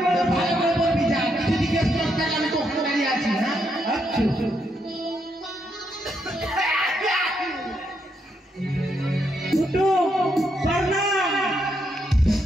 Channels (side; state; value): both; normal; correlation 0.78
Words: ভালো করে বলবি যা কিছু জিজ্ঞেস করতে আমি তো ওখানে দাঁড়িয়ে আছি হ্যাঁ আচ্ছা ফুটু প্রণাম